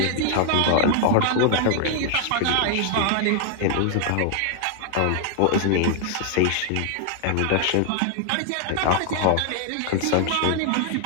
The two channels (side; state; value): both; different; correlation 0.00